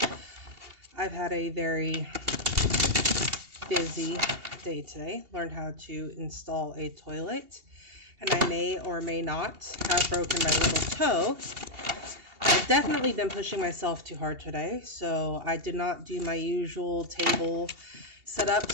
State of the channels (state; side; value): late; left; 2.8 ms